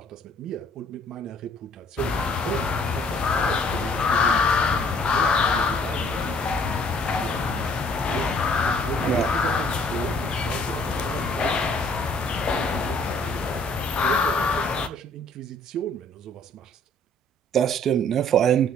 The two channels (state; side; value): normal; both; correlation 0.59